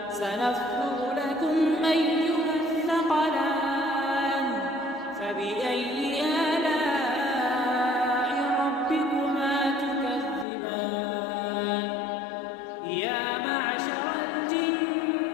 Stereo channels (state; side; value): drops out; right; at 10.5 s